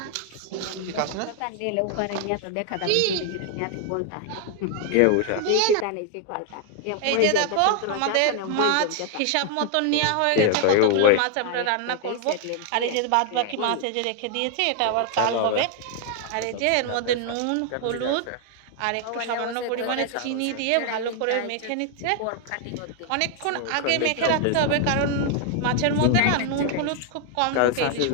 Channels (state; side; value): different; both; correlation 0.00